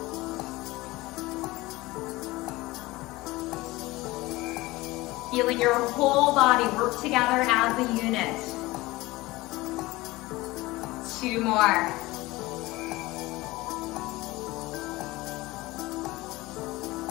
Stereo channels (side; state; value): right; quieter; 20.1 dB